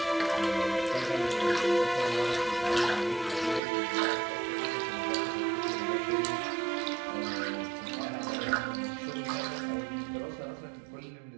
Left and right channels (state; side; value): drops out; left; at 3.6 s